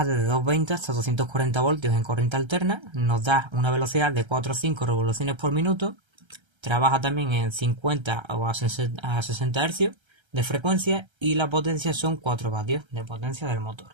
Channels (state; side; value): late; left; 1.3 ms